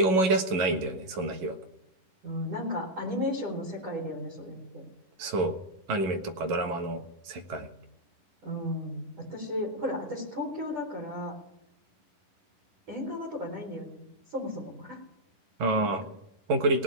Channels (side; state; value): left; late; 11 ms